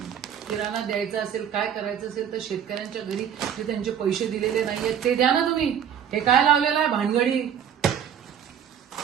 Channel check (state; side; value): quieter; left; 8.7 dB